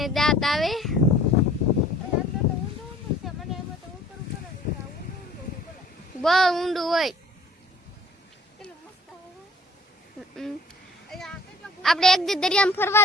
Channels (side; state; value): both; normal; correlation 0.53